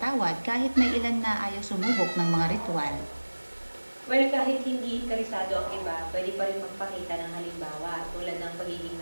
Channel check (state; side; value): inverted; both; correlation -1.00